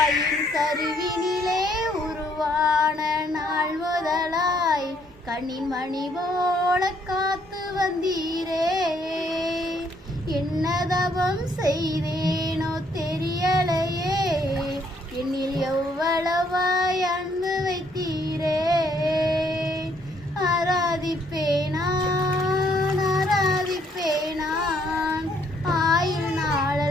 கருவினிலே உருவான நாள் முதலாய் கண்ணின் மணி போல காத்து வந்தீரே. என்னதவம் செய்தேனோ தெரியலையே, என்னில் எவ்வளவாய் அன்பு வைத்தீரே. ஆராதிப்பேன் நான் ஆயுள்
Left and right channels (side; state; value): both; normal; correlation 0.68